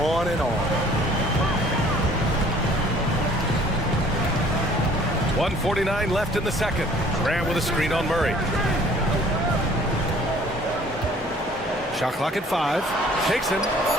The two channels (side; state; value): both; normal; correlation 0.54